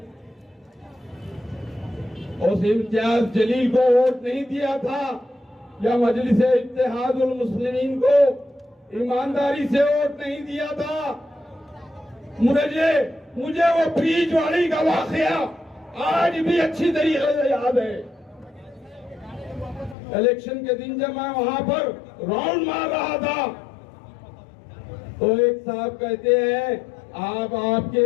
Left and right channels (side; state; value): right; drops out; at 20.0 s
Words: उस इम्तियाज जलील को वोट नहीं दिया था, या मजलिस इत्तेहादुल मुस्लिमीन को ईमानदारी से वोट नहीं दिया था? मुझे वो ब्रिज वाली का वाकया आज भी अच्छी तरीके से याद है। इलेक्शन के दिन जब मैं वहां पर राउंड मार रहा था तो एक साहब कहते हैं, आप आपके